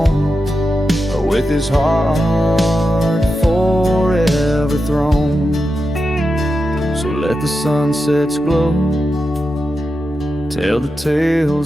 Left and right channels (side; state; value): both; normal; correlation 0.89